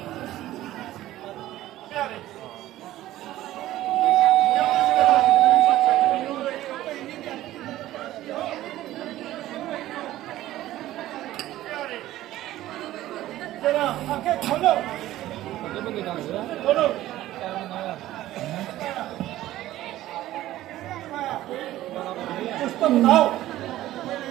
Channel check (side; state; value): left; quieter; 14.8 dB